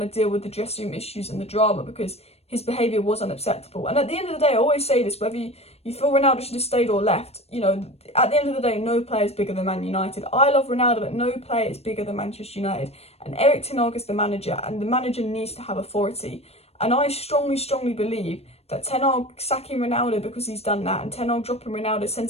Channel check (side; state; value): right; late; 0.30 ms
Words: to deal with the dressing room issues and the drama because his behaviour was unacceptable. And at the end of the day, I always say this, whether you feel Ronaldo should have stayed or left, at the end of the day, no player is bigger than Man United. I love Ronaldo, but no player is bigger than Manchester United. And Erik Ten Hag is the manager, and the manager needs to have authority. And I strongly, strongly believe that Ten Hag sacking Ronaldo because he's done that, and Ten Hag dropping Ronaldo